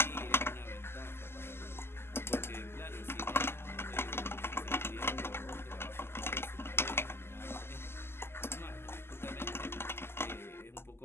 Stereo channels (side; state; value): right; late; 0.12 ms